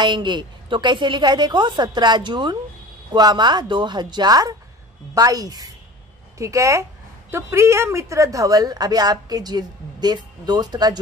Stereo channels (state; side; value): normal; both; correlation 0.39